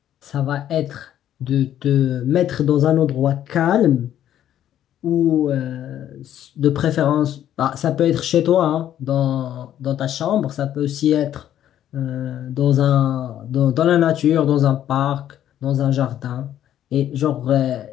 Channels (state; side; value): quieter; right; 11.2 dB